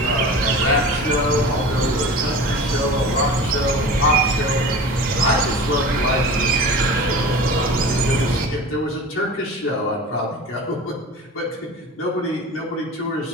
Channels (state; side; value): normal; both; correlation 0.36